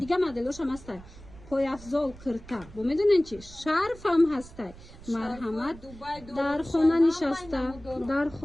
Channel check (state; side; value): noise; right; rumble, 18 dB below the sound